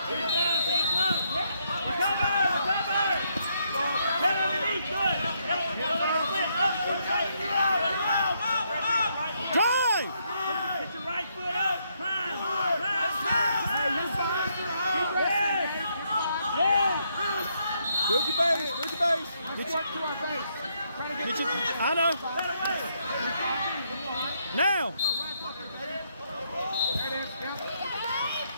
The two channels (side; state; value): both; inverted; correlation -0.75